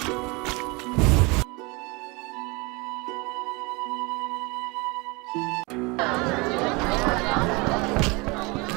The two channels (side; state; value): left; quieter; 26.7 dB